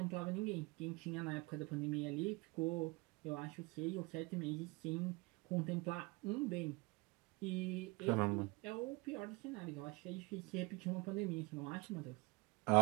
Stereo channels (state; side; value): quieter; left; 25.3 dB